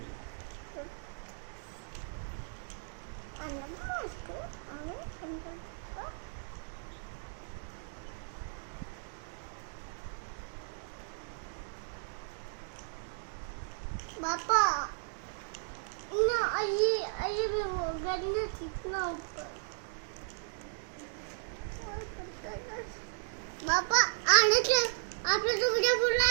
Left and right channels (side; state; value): left; silent; digital silence